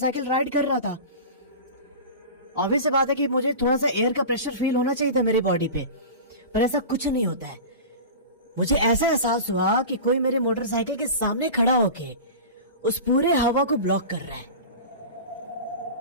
राइड कर रहा था। ऑब्वियस सी बात है कि मुझे थोड़ा सा एयर का प्रेशर फील होना चाहिए था मेरी बॉडी पे, पर ऐसा कुछ नहीं होता है। मुझे ऐसा एहसास हुआ कि कोई मेरे मोटरसाइकिल के सामने खड़ा होके उस पूरे हवा को ब्लॉक कर रहा है,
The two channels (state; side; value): inverted; both; correlation -0.32